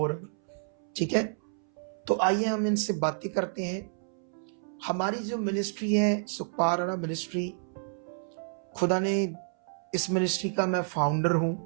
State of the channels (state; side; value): silent; left; 58 dB below the other